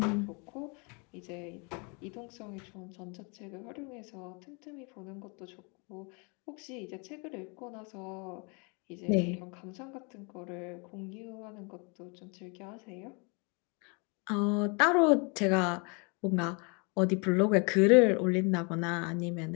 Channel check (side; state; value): right; quieter; 32.6 dB